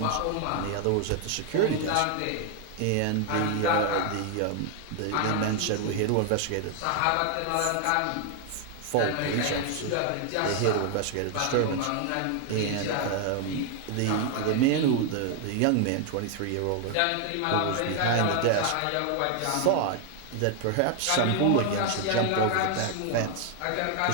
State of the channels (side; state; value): both; different; correlation 0.00